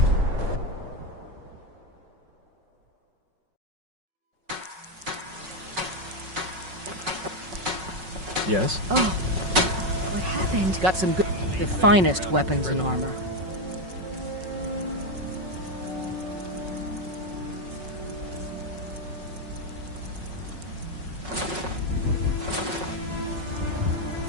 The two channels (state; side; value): late; left; 5.4 ms